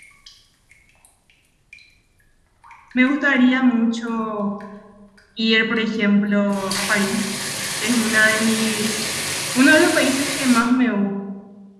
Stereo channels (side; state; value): both; identical; correlation 1.00